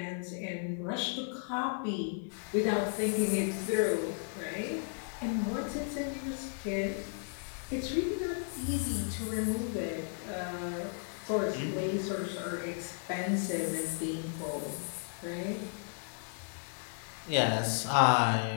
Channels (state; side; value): silent; right; 55 dB below the other